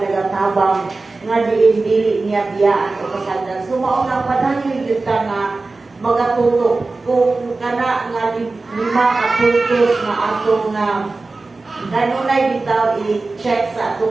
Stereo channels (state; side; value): quieter; left; 3.5 dB